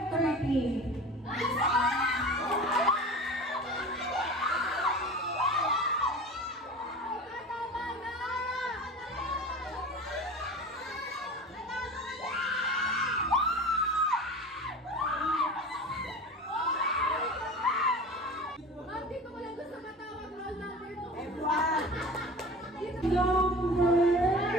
30. Dito ko lang gusto matawag roll number 2. Everyone! Number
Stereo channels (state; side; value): normal; both; correlation 0.36